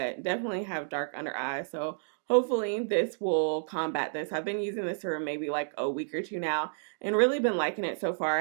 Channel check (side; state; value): left; silent; digital silence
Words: definitely have dark under eyes. So hopefully this will combat this. I've been using this for maybe like a week or 2 now and really been liking it so far.